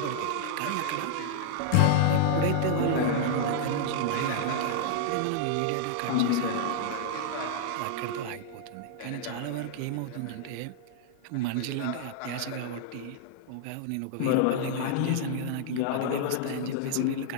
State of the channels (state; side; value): different; both; correlation -0.01